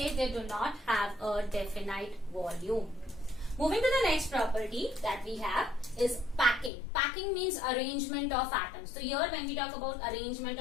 they do not have a definite volume. Moving to the next property that we have is packing. Packing means arrangement of atoms. तो here when we talk about arrangement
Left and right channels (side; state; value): right; drops out; at 6.7 s